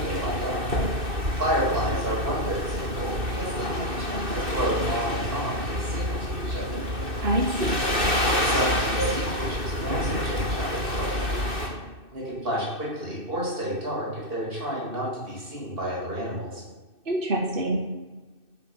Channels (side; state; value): left; late; 2.6 ms